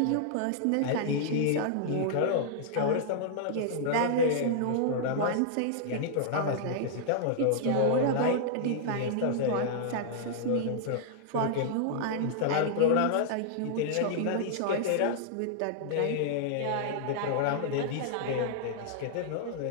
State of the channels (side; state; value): both; different; correlation -0.01